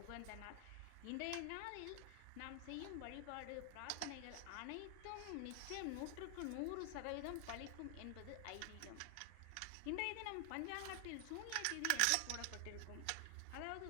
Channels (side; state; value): both; different; correlation 0.00